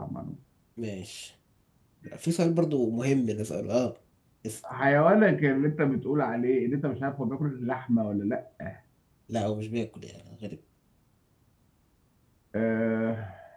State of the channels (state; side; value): identical; both; correlation 1.00